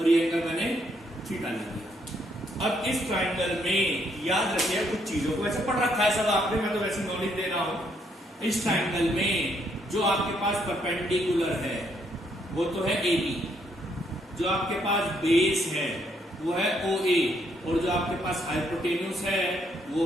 ये एंगल मैंने थीटा ले दिया। अब इस ट्राइंगल में याद रखिए कुछ चीजों को, वैसे पढ़ रखा है सब आपने, मैं तो वैसे नॉलेज दे रहा हूं। इस ट्राइंगल में जो आपके पास परपेंडिकुलर है वो तो है AB, जो आपके पास बेस है वो है OA, और जो आपके पास हाइपोटेन्यूस है वो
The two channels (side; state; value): both; normal; correlation 0.72